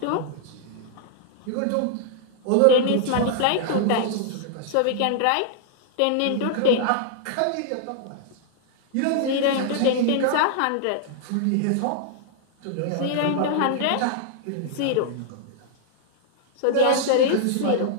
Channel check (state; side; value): different; both; correlation -0.01